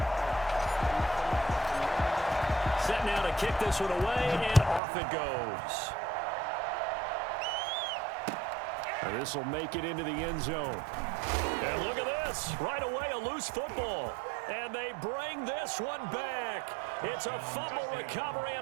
Set now to kick this one away, and off it goes. And this will make it into the end zone. And look at this. Right away, a loose football. And they bring this one back. It's a fumble recovery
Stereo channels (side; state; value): left; drops out; at 4.8 s